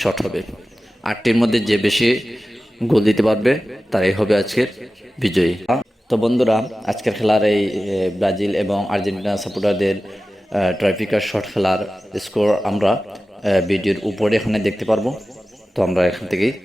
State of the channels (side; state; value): both; normal; correlation 0.95